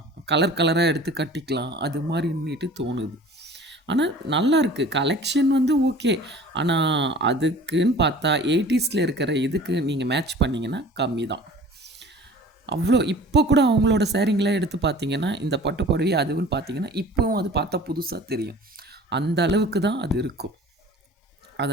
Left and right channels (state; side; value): normal; both; correlation 0.45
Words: கலர் கலராக எடுத்து கட்டிக்கலாம், அது மாதிரின்னுட்டு தோணுது. ஆனால் நல்லாயிருக்கு. கலெக்ஷன் வந்து ஓகே. ஆனால் அதுக்குன்னு பார்த்தா 80ஸ்ல இருக்கிற இதுக்கு நீங்கள் மேட்ச் பண்ணிங்கன்னா கம்மி தான். அவ்வளோ இப்போ கூட அவங்களோட சேரீங்களாம் எடுத்து பார்த்தீங்கன்னா, இந்த பட்டு புடவை அதுவுன்னு பார்த்தீங்கன்னா, இப்போவும் அது பார்த்தா புதுசாக தெரியும். அந்த அளவுக்கு தான் அது இருக்கும்.